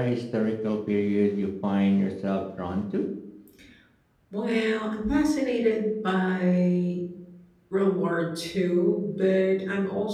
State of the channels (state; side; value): identical; both; correlation 1.00